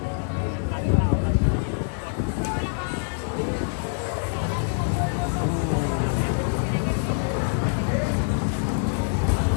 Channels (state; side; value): silent; right; digital silence